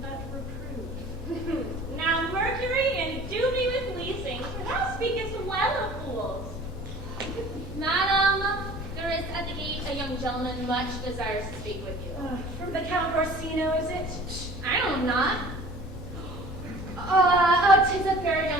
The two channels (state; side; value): normal; both; correlation 0.46